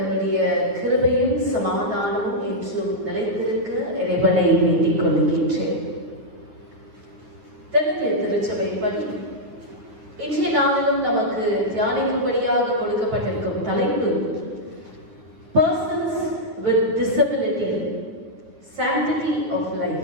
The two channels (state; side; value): late; left; 9.6 ms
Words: கிருபையும் சமாதானமும் என்றும் நிலைத்திருக்க இறைவனை வேண்டிக் கொள்கின்றேன். தென்னிந்திய திருச்சபைப்படி இன்றைய நாளிலும் நமக்கு தியானிக்கும்படியாக கொடுக்கப்பட்டிருக்கும் தலைப்பு Persons with Disability, Sanctity of